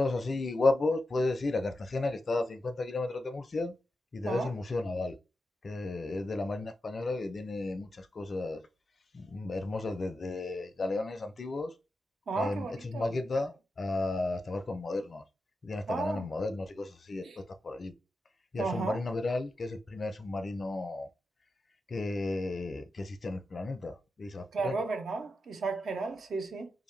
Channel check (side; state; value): both; normal; correlation 0.89